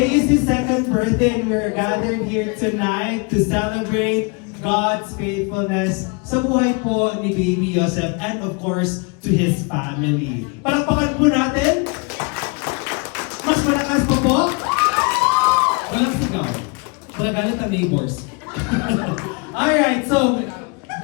is his second birthday and we're gathered here tonight to celebrate God's faithfulness sa buhay po ni Baby Yosef and of course to his family. Palakpakan po natin. Mas malakas pa po. Walang sigaw. Magagalit ang neighbors. Alright, so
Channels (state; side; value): quieter; right; 32.4 dB